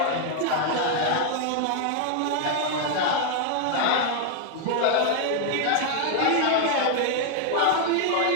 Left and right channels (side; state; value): both; different; correlation 0.00